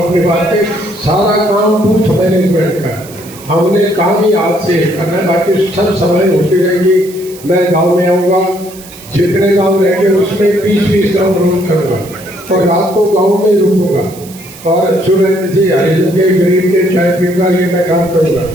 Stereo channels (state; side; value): noise; right; hiss, 19 dB below the sound